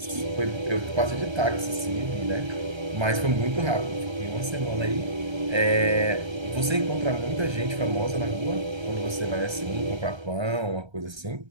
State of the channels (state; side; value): late; left; 1.3 ms